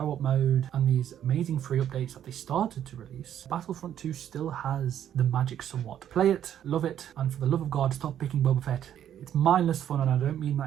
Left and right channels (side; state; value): left; quieter; 10.3 dB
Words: mode, and these amazing free updates that they started to release, Battlefront 2 still has the magic somewhat. Play it, love it, and for the love of God, stop picking Boba Fett. It's mindless fun, and I don't mean